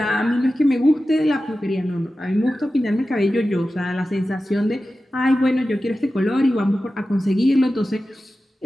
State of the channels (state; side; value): normal; both; correlation 0.94